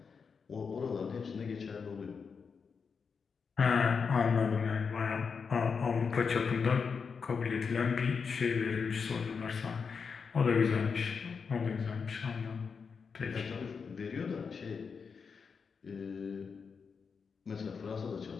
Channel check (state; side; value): quieter; right; 5.7 dB